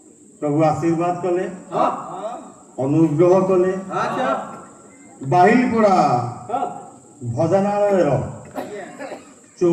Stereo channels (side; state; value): both; identical; correlation 1.00